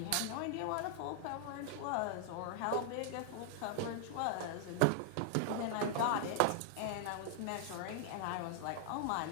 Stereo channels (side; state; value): both; different; correlation 0.00